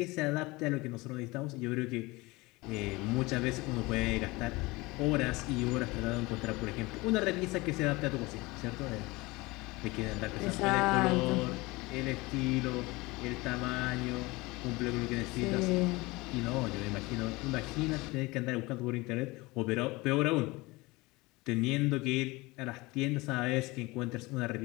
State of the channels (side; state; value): right; quieter; 22.7 dB